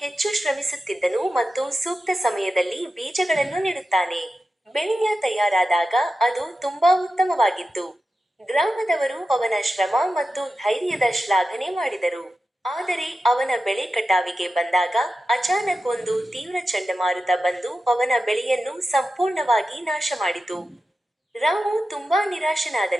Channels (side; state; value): both; normal; correlation 0.93